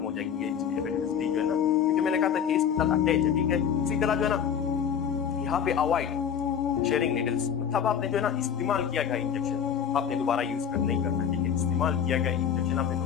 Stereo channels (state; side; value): quieter; right; 8.1 dB